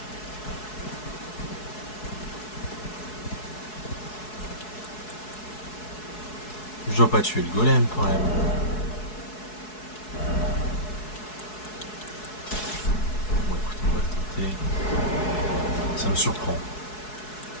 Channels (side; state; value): right; late; 4.7 ms